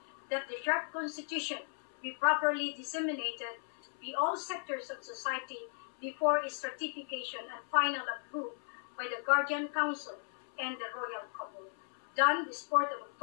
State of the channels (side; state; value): right; silent; 54 dB below the other